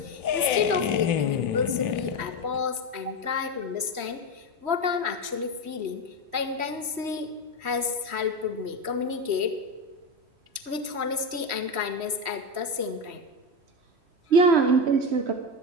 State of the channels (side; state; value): left; late; 3.1 ms